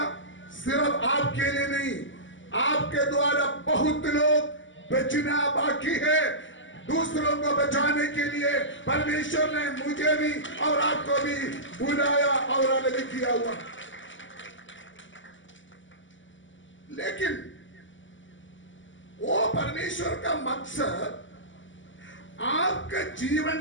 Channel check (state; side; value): late; right; 0.56 ms